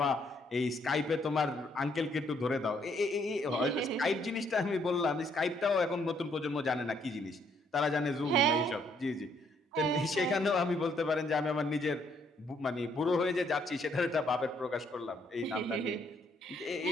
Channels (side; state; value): both; normal; correlation 0.69